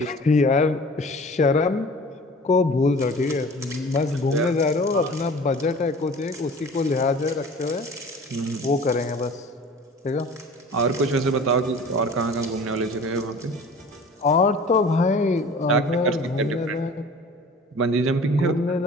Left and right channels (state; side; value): normal; both; correlation 0.44